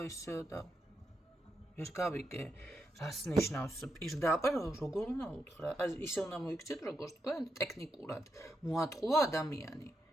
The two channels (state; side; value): normal; both; correlation 0.84